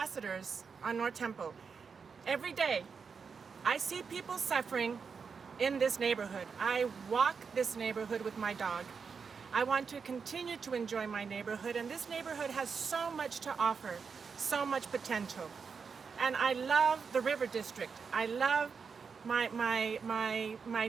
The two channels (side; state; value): left; quieter; 5.7 dB